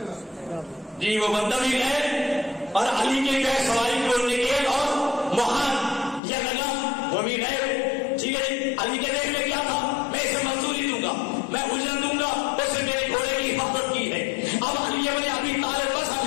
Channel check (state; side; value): drops out; right; at 6.2 s